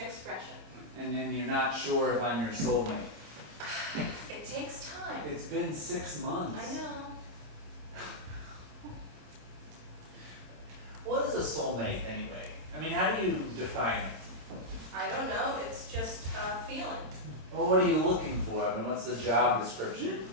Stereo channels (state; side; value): late; left; 26 ms